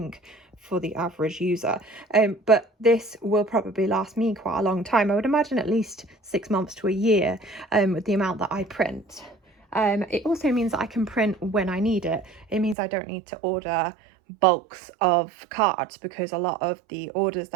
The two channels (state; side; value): drops out; left; at 12.8 s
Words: for the average user, but this will probably last me quite a long time. I would imagine at least 6 months to a year, with the amount that I print. It also means that I can print when I need it. It means I don't need to order bulks of cards, because a lot of the orders